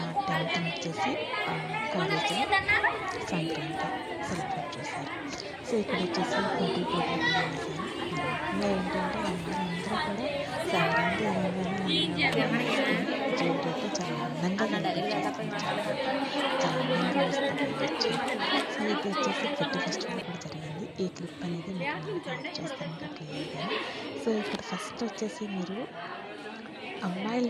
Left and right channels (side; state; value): both; identical; correlation 1.00